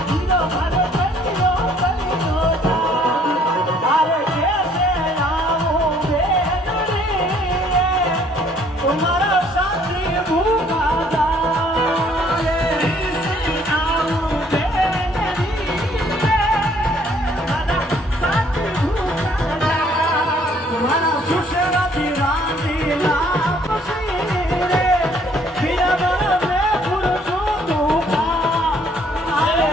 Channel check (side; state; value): both; normal; correlation 0.62